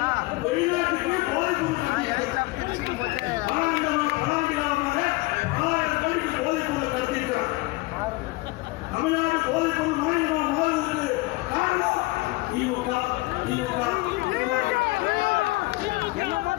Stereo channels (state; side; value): quieter; right; 21.7 dB